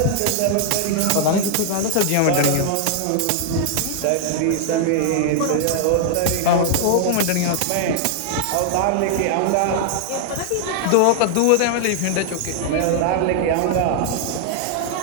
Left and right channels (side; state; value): both; different; correlation -0.01